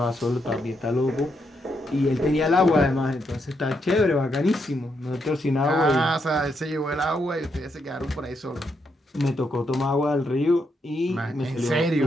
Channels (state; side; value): normal; both; correlation 0.79